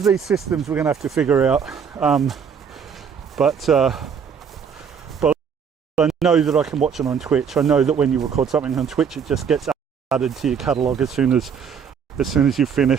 these systems we're going to have to figure out, but I know that I can watch it on Twitch. I know that when you record something on Twitch, it just gets added to your catalogue as soon as you've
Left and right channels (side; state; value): left; quieter; 6.9 dB